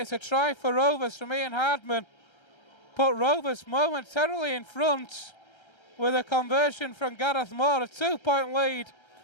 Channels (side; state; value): right; late; 1.3 ms